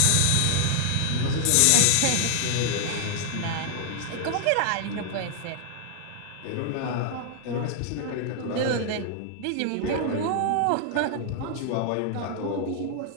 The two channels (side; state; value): both; different; correlation -0.01